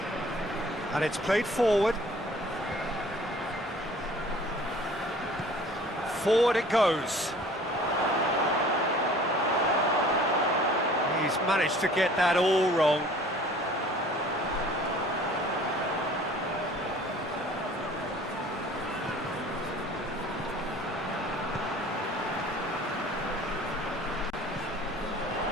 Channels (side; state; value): both; normal; correlation 0.49